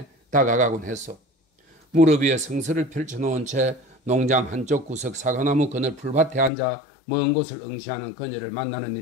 다가가곤 했어. 무릎 위에 성서를 펼쳐놓은 채 농장 한쪽 구석 사과나무 그늘 풀밭에 앉아 먼 곳을 응시하는 그녀를 만나는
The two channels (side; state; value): right; drops out; at 6.5 s